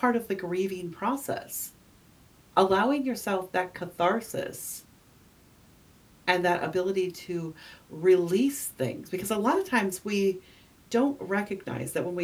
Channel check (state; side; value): identical; both; correlation 1.00